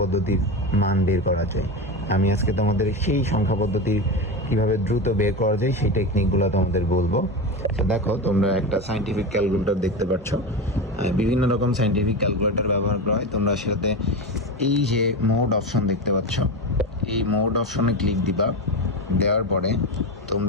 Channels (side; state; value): both; normal; correlation 0.20